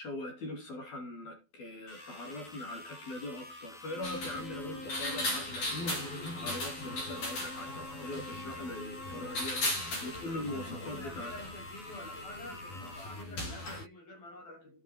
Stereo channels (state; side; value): late; right; 12 ms